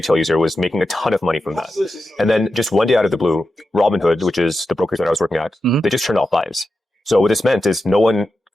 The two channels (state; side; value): normal; both; correlation 0.90